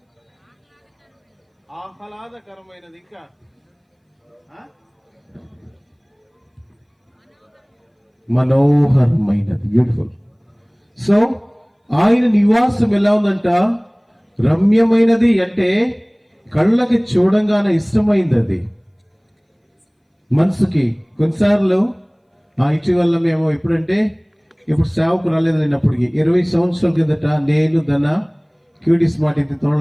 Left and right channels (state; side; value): identical; both; correlation 1.00